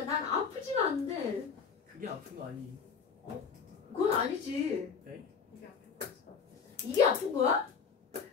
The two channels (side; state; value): right; quieter; 5.9 dB